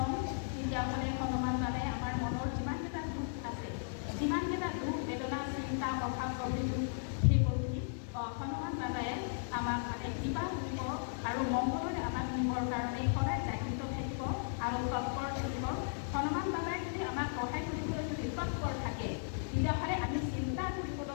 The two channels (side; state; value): right; silent; digital silence